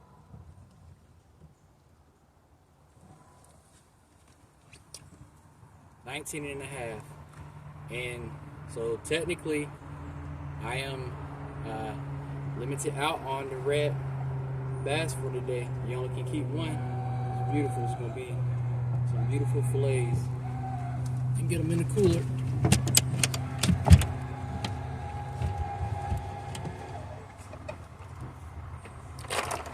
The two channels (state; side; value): identical; both; correlation 1.00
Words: And so technically I am limited out on the red bass for today. You only can keep one. beautiful. It's gonna be some beautiful fillets. And get them in the cooler.